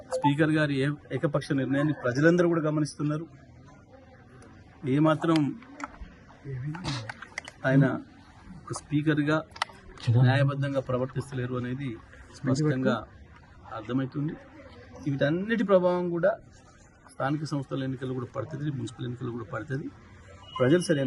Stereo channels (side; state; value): both; identical; correlation 1.00